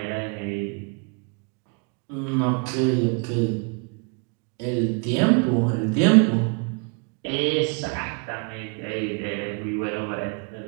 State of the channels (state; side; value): quieter; left; 35.5 dB